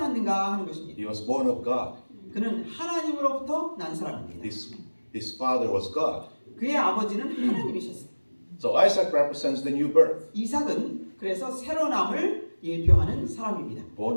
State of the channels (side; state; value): both; inverted; correlation -1.00